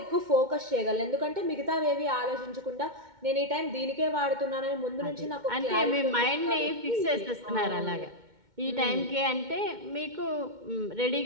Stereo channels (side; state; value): left; late; 2.1 ms